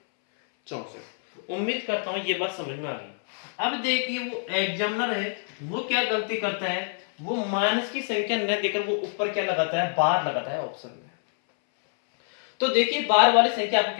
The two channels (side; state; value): right; silent; 61 dB below the other